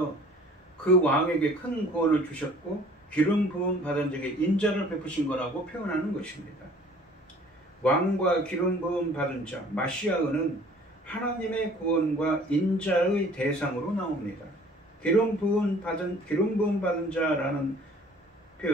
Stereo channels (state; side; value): normal; both; correlation 0.52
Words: 그 왕에게 큰 구원을 주셨고 기름 부음 받은 자에게 인자를 베푸신 거라고 표현하는 것입니다. 왕과 기름 부음 받은 자, 마시아는 하나님의 구원과 인자의 대상으로 나옵니다. 기름 부음 받은 자라는